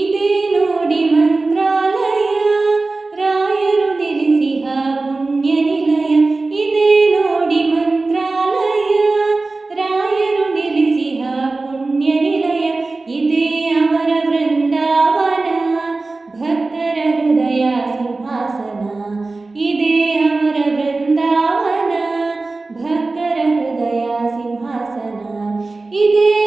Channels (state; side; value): quieter; left; 3.5 dB